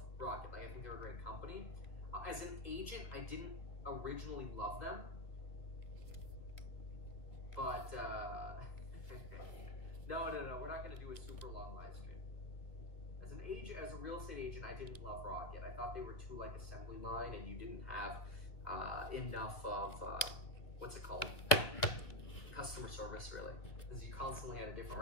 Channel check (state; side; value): late; right; 2.3 ms